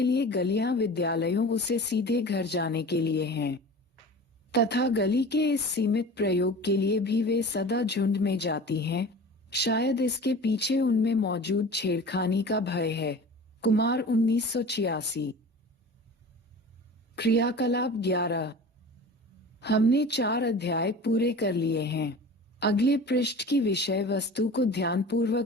लिए गलियां विद्यालयों से सीधे घर जाने के लिए हैं, तथा गली के इस सीमित प्रयोग के लिए भी वे सदा झुंड में जाती हैं। शायद इसके पीछे उनमें मौजूद छेड़खानी का भय है। कुमार 1986। क्रियाकलाप 11। हमने 4 अध्याय पूरे कर लिए हैं। अगले पृष्ठ की विषय वस्तु को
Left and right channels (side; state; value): both; normal; correlation 0.38